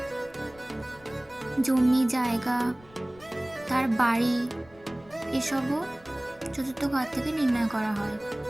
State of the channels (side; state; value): left; noise; rumble, 25 dB below the sound